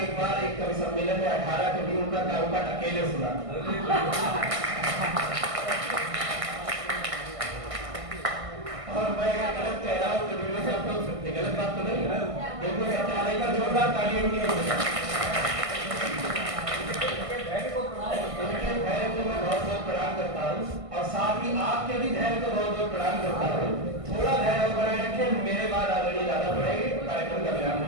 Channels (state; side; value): late; left; 1.5 ms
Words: एक बार एक कवि सम्मेलन में 18 कवियों का कारुपाठ अकेले सुना। और मैं गलत कह रहा हूँ तो गेरू साहब को गलत बात तो नहीं है, बिल्कुल सत्यालय का जोरदार तालियां की प्रणाम करता हूँ और साथ ही आपके भी धैर्य को बहुत बहुत प्रणाम करता हूँ। थोड़ा धैर्य बनाए रखें, मेरे बाद आदरणीय दादा पढ़ेंगे, कार्यक्रम का विराम हो